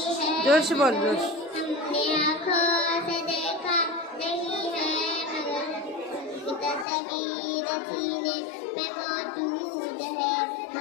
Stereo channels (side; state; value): right; drops out; at 6.9 s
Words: है, जोर से बोल, जोर से। हमने आँखों से देखा नहीं है मगर तस्वीर सीने में मौजूद है।